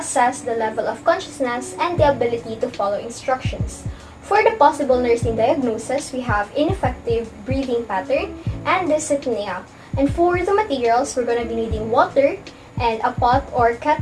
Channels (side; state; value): both; identical; correlation 1.00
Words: the level of consciousness and the ability to follow instructions. For the possible nursing diagnosis, we have ineffective breathing pattern and dyspnea. And for the materials, we're going to be needing water and a pot or